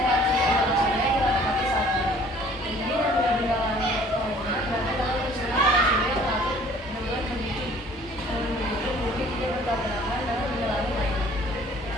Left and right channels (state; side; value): normal; both; correlation 0.54